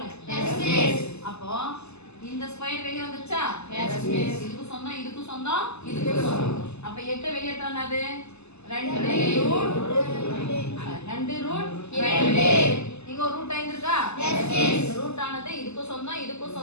Yes miss. அப்போ இந்த ஸ்கொயர் வெளிய வந்துச்சா? Yes miss. இதுக்கு சொந்தம், இதுக்கு சொந்தம், இதுக்கு சொந்தம். அப்ப 8 வெளிய எடுத்தா என்னது? 2 ரூட் 2. இங்க ஒரு ரூட் 5 இருக்கா? Yes miss. ரூட் ஆனது இதுக்கு சொந்தம், இதுக்கு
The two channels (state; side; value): late; right; 0.80 ms